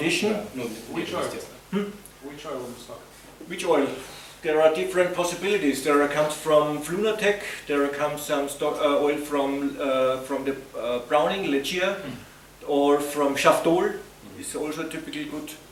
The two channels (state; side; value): identical; both; correlation 1.00